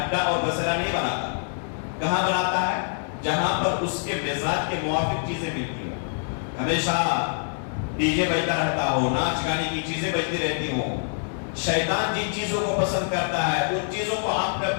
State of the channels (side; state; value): right; silent; digital silence